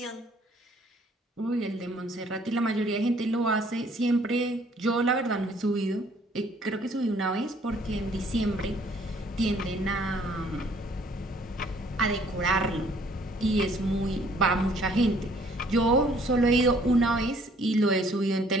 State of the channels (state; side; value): normal; both; correlation 0.61